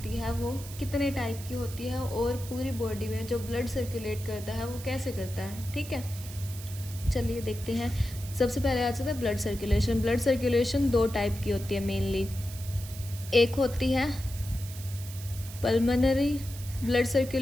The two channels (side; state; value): right; noise; hiss, 14 dB below the sound